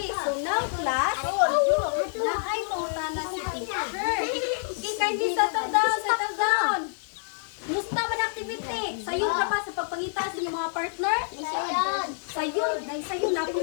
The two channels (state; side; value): silent; right; digital silence